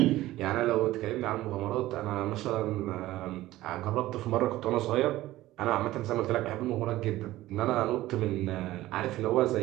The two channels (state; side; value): quieter; left; 16.2 dB